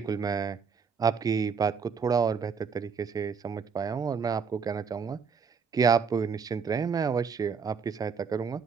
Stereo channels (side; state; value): left; quieter; 6.0 dB